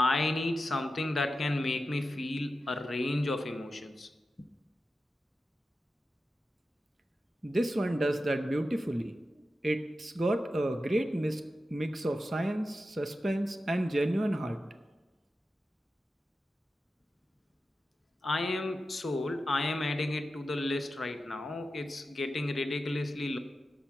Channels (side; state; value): both; normal; correlation 0.92